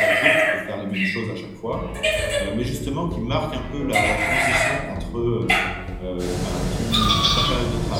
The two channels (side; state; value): both; identical; correlation 1.00